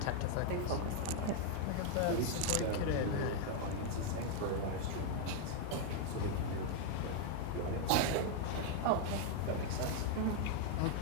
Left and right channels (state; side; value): different; both; correlation 0.00